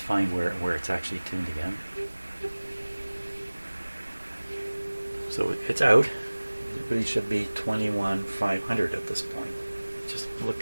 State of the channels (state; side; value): inverted; both; correlation -1.00